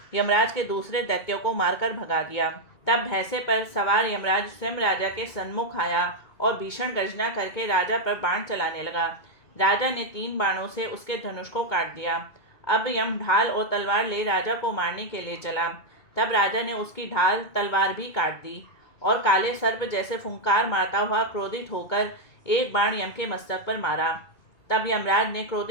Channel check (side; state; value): right; late; 2.2 ms